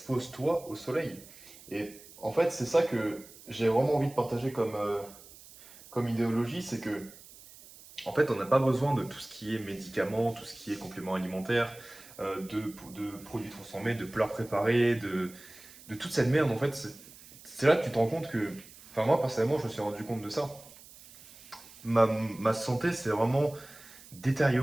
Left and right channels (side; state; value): right; noise; hiss, 20 dB below the sound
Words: au soleil. Et en fait, c'est ça que j'ai vraiment envie de partager comme idéologie, c'est que en fait, on n'a pas besoin de tout ce qui est médicaments, tout ce qui est compléments alimentaires, de produits transformés, de plats préparés, de toute cette merde. En fait, c'est là que tu te rends compte que, enfin moi personnellement, je me suis rendu compte de ça. Ma santé, c'est vraiment